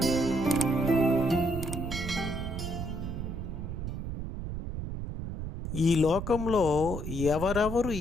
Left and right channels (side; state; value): right; noise; rumble, 6 dB below the sound